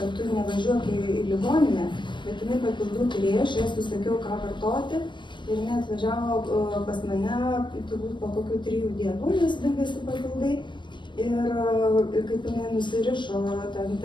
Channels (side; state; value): right; late; 0.22 ms